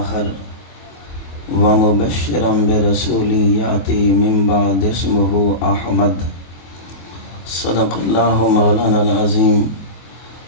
ومبشرا برسول یأتی من بعد اسمہ احمد صدق اللہ مولانا العظیم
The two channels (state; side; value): late; right; 24 ms